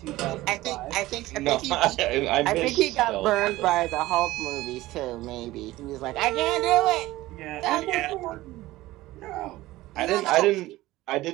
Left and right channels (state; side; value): quieter; left; 17.5 dB